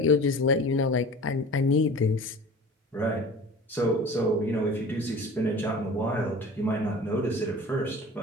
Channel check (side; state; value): both; normal; correlation 0.40